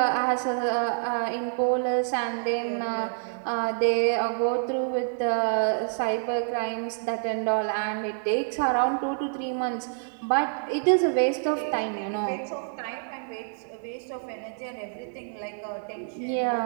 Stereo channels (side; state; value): left; silent; 60 dB below the other